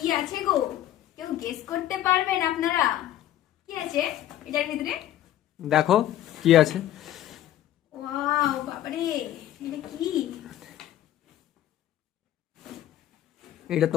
আছে গো, কেউ গেস করতে পারবেন আপনারা কি আছে এটার ভিতরে? দেখো কি আছে। ওয়াও বাবারে, এটা কি? এটা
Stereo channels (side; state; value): right; quieter; 12.6 dB